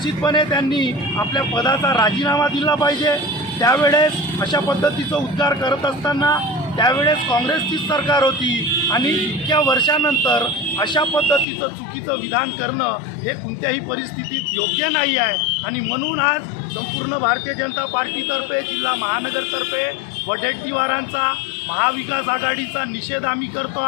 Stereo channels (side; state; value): right; drops out; at 11.5 s